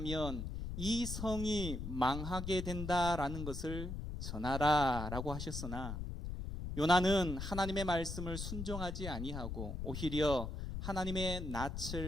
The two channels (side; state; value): left; noise; rumble, 5 dB below the sound